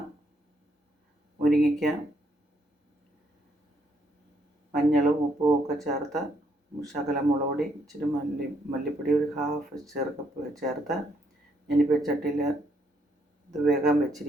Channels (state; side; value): normal; both; correlation 0.73